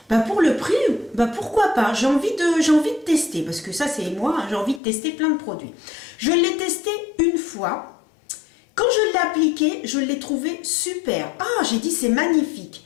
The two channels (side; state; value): right; drops out; at 4.8 s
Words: bah pour le prix, bah pourquoi pas, j'ai envie de tester. Parce que ça c'est moi, hein, j'ai envie de tester plein de produits. Je l'ai testé une fois. Quand je l'ai appliqué, je l'ai trouvé super. Ah, j'ai dit c'est magnifique.